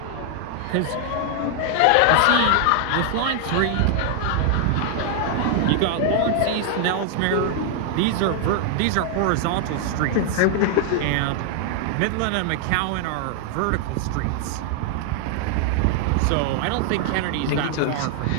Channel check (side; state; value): both; different; correlation 0.00